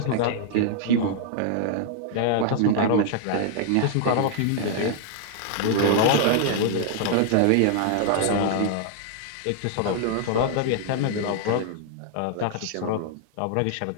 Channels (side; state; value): both; different; correlation -0.01